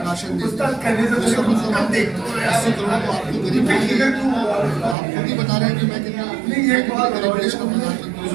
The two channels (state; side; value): drops out; left; at 5.0 s